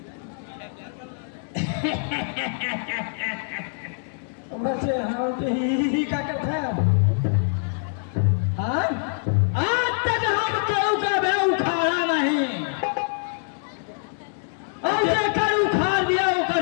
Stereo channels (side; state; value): right; silent; 62 dB below the other